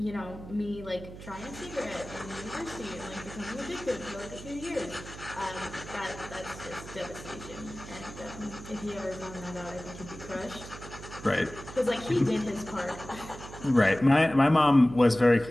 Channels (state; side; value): noise; right; hum, 13 dB below the sound